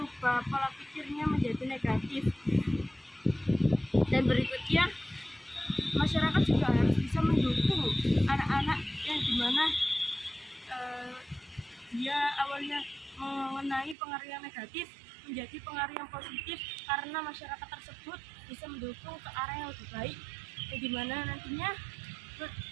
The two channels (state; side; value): drops out; left; at 14.0 s